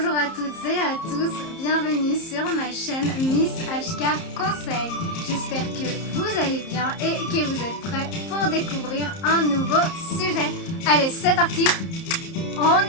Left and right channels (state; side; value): late; right; 30 ms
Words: à toutes et à tous, bienvenue sur ma chaîne Miss HK Conseil. J'espère que vous allez bien et que vous êtes prêts pour découvrir un nouveau sujet. Allez, c'est parti,